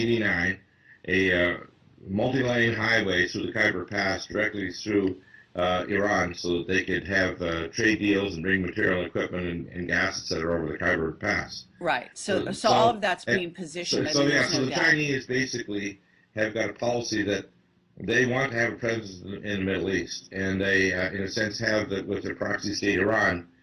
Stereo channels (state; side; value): identical; both; correlation 1.00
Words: a multi-lane highway through the Khyber Pass directly through Iran, so that they could have trade deals and bring material, equipment, and gas, etc., over the Khyber Pass. right. So, So all of so, that's uh, being positioned. I so mean, yeah. there's So no the doubt. Chinese basically have got a policy that they want to have a presence in the Middle East, and they, in a sense, have that with their proxy state Iran.